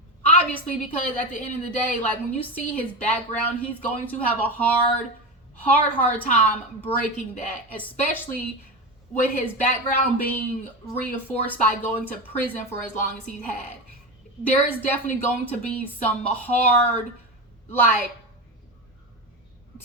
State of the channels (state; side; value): normal; both; correlation 0.21